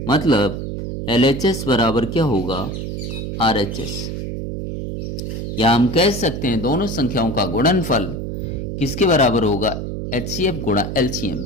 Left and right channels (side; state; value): right; noise; hum, 5 dB below the sound